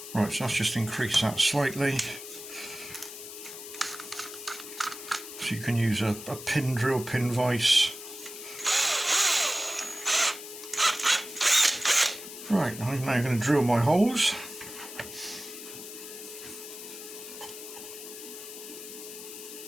Right, so let's just increase that slightly. So you can use a pin drill, pin vise. Right, I'm now going to drill my holes.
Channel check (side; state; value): left; noise; hiss, 12 dB below the sound